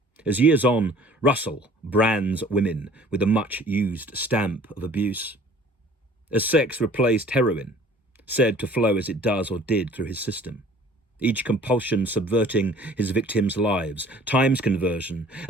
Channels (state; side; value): normal; both; correlation 0.51